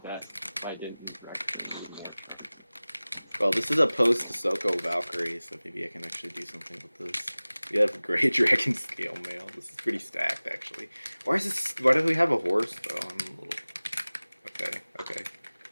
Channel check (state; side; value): inverted; both; correlation -0.99